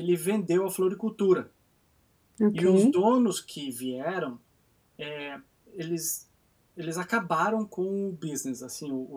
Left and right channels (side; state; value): both; identical; correlation 1.00